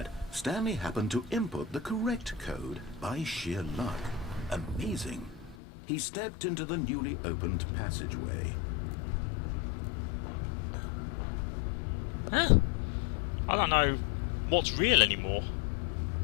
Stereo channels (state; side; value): drops out; right; at 5.6 s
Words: Stanley happened to input the correct code by sheer luck. Amazing. He stepped into the newly opened passageway. Huh? I don't know what's real anymore.